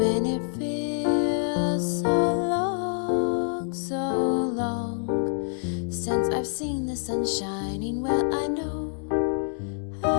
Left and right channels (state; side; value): silent; right; digital silence